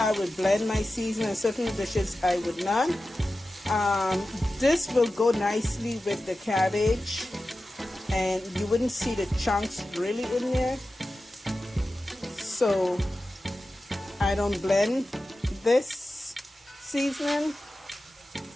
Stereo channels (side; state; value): both; normal; correlation 0.94